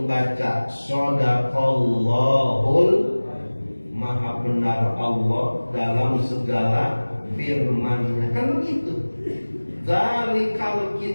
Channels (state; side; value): inverted; both; correlation -1.00